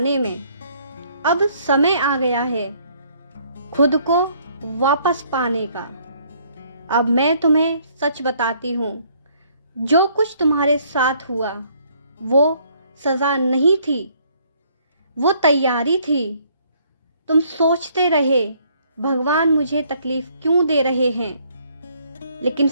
में। अब समय आ गया है खुद को वापस पाने का। अब मैं तुम्हें सच बताती हूँ, जो कुछ तुम्हारे साथ हुआ वो सज़ा नहीं थी, वो तैयारी थी। तुम सोचते रहे भगवान मुझे तकलीफ क्यों दे रहे हैं, लेकिन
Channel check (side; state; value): both; inverted; correlation -0.64